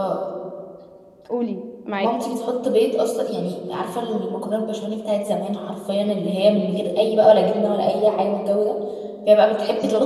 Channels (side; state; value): both; identical; correlation 1.00